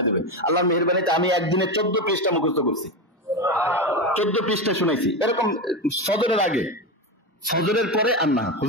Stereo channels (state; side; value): normal; both; correlation 0.16